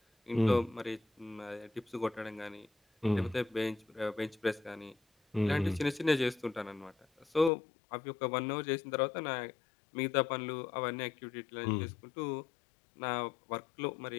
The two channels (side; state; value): right; drops out; at 7.5 s